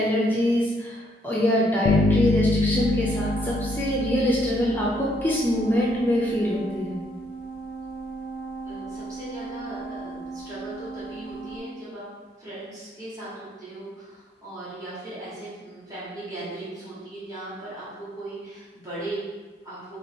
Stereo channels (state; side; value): normal; both; correlation 0.70